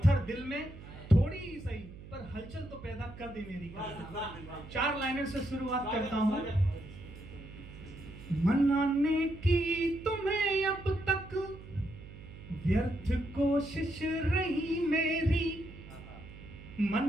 दिल में थोड़ी ही सही पर हलचल तो पैदा कर दे मेरी कविता। 4 लाइनों से शुरुआत करता हूँ। मनाने की तुम्हें अब तक व्यर्थ कोशिश रही मेरी,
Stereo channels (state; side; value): noise; right; hum, 15 dB below the sound